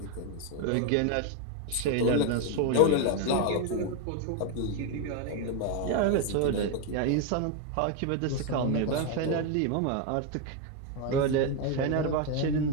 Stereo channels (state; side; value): different; both; correlation 0.02